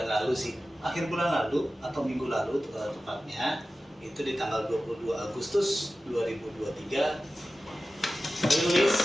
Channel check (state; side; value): normal; both; correlation 0.95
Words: lalu sih, akhir bulan lalu atau minggu lalu tepatnya, itu di tanggal 22 Agustus 2023 rilis